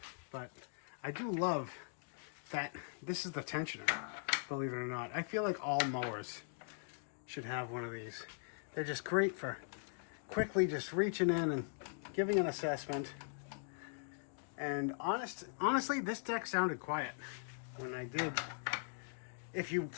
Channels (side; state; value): right; silent; digital silence